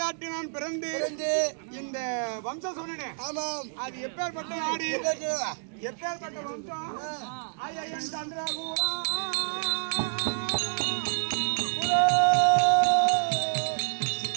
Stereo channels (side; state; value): left; silent; 59 dB below the other